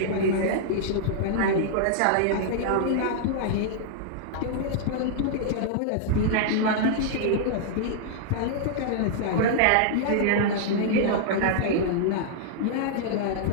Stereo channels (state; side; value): different; both; correlation -0.01